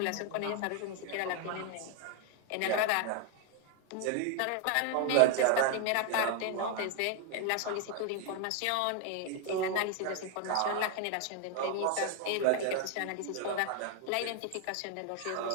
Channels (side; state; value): both; different; correlation 0.01